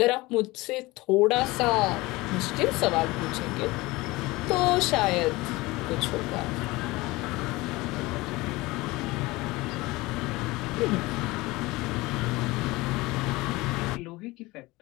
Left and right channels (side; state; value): right; quieter; 21.3 dB